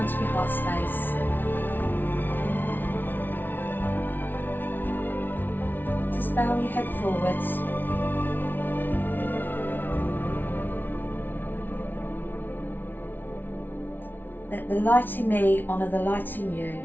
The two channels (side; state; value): right; late; 0.091 ms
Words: of your heart space. Just bow your head forwards. Let the light in me honour the light in you.